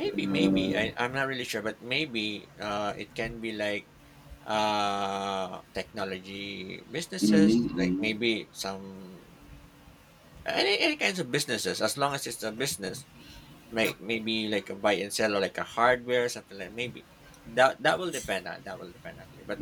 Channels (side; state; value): both; identical; correlation 1.00